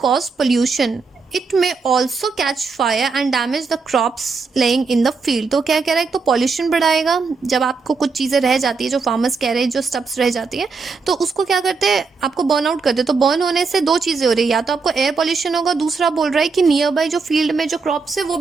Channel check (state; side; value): quieter; left; 4.7 dB